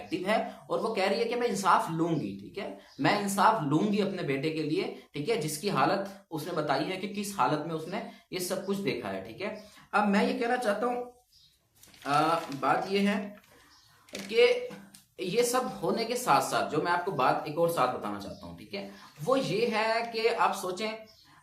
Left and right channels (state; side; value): identical; both; correlation 1.00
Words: एक्टिव है, और वो कह रही है कि मैं इंसाफ लूंगी। ठीक है। मैं इंसाफ लूंगी अपने बेटे के लिए। ठीक है। जिसकी हालत उसने बताई है कि किस हालत में उसने ये सब कुछ देखा है। ठीक है। अब मैं ये कहना चाहता हूं, बात ये है कि ये सब होने के साथ साथ जो मैं आपको बात एक और साथ बताना चाहता हूं, ठीक है, वो ये है कि आप सोचें